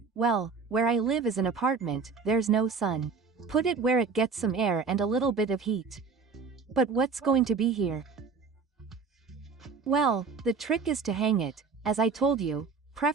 well, where I live is an apartment, there's no sun. Put it where it gets some air and a little bit of heat. But what's going to be here? Well, the trick is to hang it, as I told you,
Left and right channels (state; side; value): quieter; left; 5.0 dB